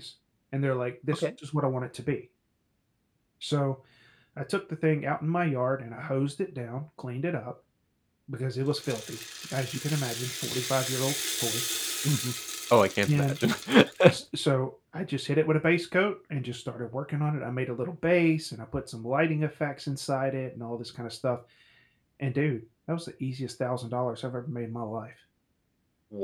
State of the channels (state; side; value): identical; both; correlation 1.00